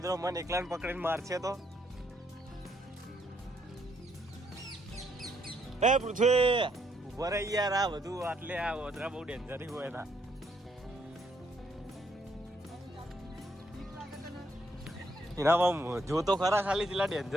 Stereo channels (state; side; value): normal; both; correlation 0.72